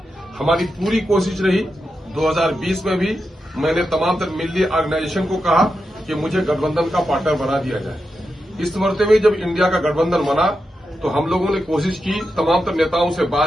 हमारी पूरी कोशिश रही 2020 में भी, मैंने तमाम तर मिली ऑर्गेनाइजेशन को कहा कि मुझे गठबंधन का पार्टनर बना दिया जाए। इस मरते में जब इंडिया का गठबंधन बना तो हम लोगों ने कोशिश की, तमाम तर नेताओं से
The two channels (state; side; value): normal; both; correlation 0.88